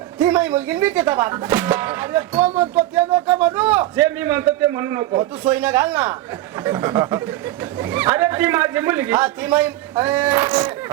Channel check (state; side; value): quieter; left; 15.4 dB